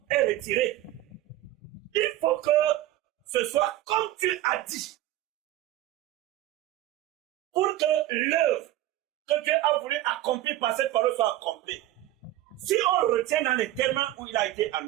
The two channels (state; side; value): quieter; left; 14.2 dB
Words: est retiré. Il faut que ce soit comme tu as dit. Pour que l'œuvre que Dieu a voulu accomplir par cette parole soit accomplie. Si on retient dans les termes où il a été